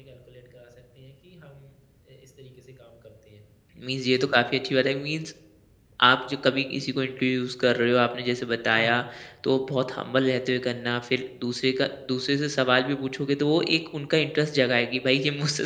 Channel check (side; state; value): both; identical; correlation 1.00